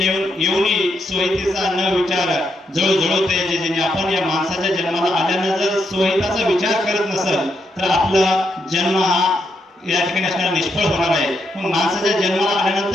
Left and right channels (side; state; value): both; normal; correlation 0.80